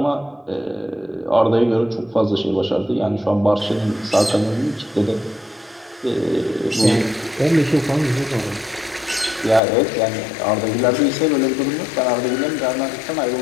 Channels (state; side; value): drops out; right; at 9.6 s